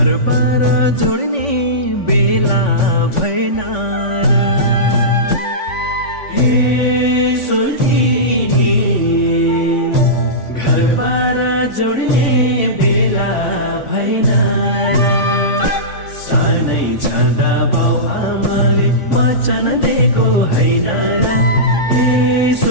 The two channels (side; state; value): right; late; 3.5 ms